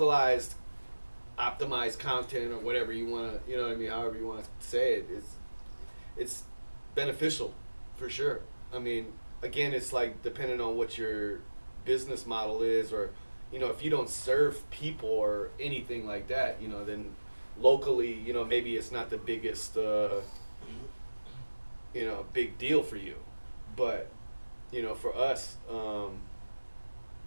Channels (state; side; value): inverted; both; correlation -1.00